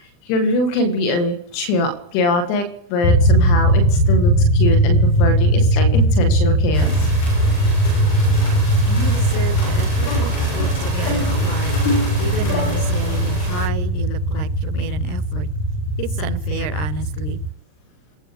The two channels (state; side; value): late; right; 40 ms